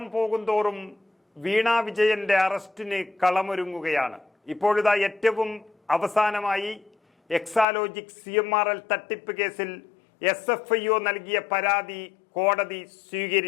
പോകുന്തോറും വീണ വിജയന്റെ അറസ്റ്റിന് കളമൊരുങ്ങുകയാണ്. ഇപ്പോഴിതാ ഏറ്റവും അവസാനമായി എക്സാലോജിക് CMRL തട്ടിപ്പ് കേസിൽ SFIO നൽകിയ പരാതി കോടതി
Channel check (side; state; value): right; drops out; at 7.7 s